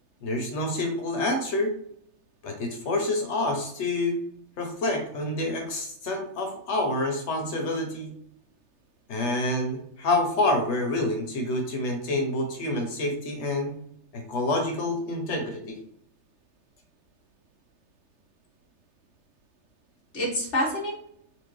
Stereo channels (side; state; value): right; late; 3.3 ms